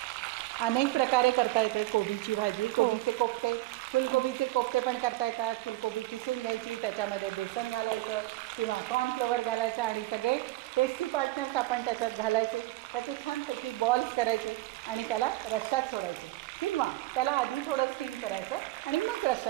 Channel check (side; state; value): left; quieter; 18.2 dB